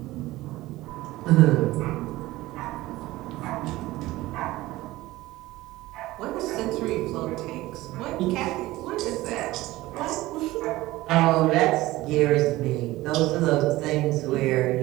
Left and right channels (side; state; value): left; quieter; 18.0 dB